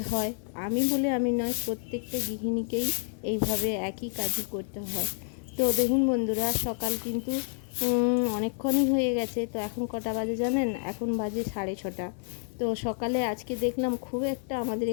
হয়। আমি বলে আমি নয়, প্রত্যেকটা গৃহিণীকেই এইভাবে একই কাজই করতে হয়। তো দেখুন বন্ধুরা, সকাল কিন্তু অনেকক্ষণই হয়ে গেছে। তো এখন কটা বাজে জানেন? এখন বাজে 6:30। তো সকালে আজকে দেখলাম খুব একটা আমাদের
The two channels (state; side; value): silent; right; digital silence